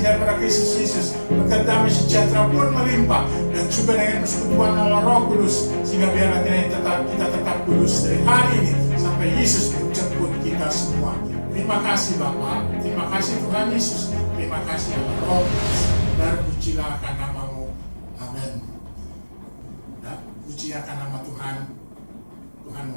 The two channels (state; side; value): inverted; both; correlation -1.00